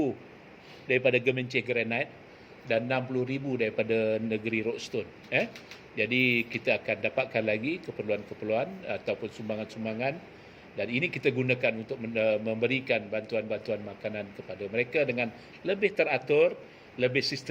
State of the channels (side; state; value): both; identical; correlation 1.00